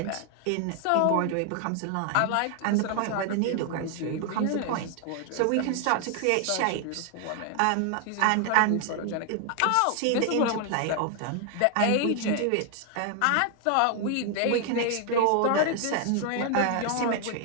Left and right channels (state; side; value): different; both; correlation 0.00